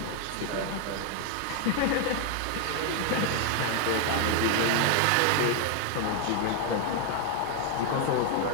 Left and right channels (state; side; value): different; both; correlation 0.01